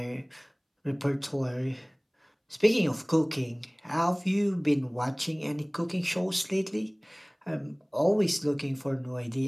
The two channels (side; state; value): both; identical; correlation 1.00